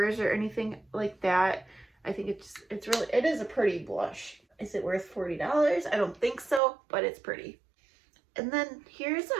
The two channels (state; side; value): drops out; left; at 6.6 s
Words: or anything like that. I think it is a pretty blush. Is it worth $40? I don't think so, but it's pretty. And then here's